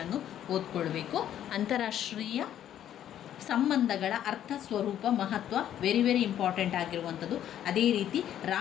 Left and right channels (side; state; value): right; quieter; 10.9 dB